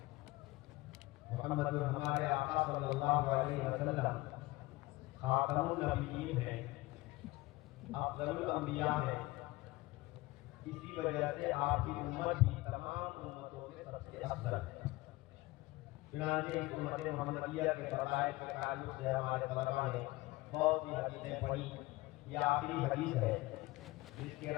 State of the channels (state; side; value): quieter; right; 20.2 dB